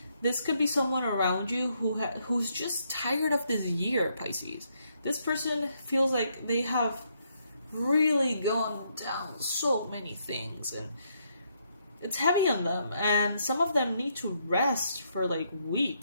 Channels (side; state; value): both; inverted; correlation -0.75